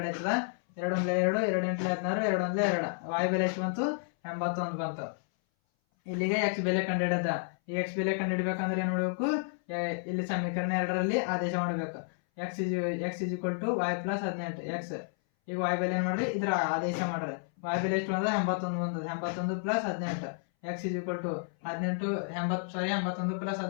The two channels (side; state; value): right; silent; 57 dB below the other